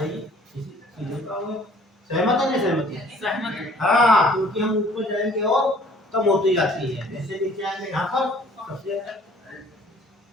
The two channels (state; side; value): normal; both; correlation 0.54